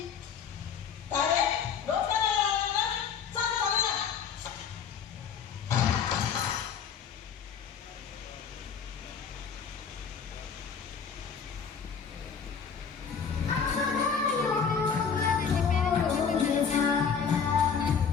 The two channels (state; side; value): quieter; right; 6.7 dB